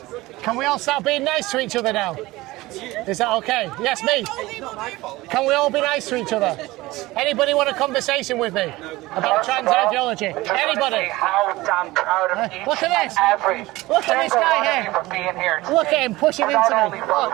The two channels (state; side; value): quieter; left; 19.4 dB